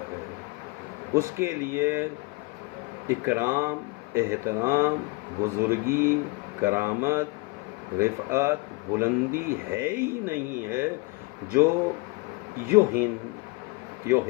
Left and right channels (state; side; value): quieter; right; 25.5 dB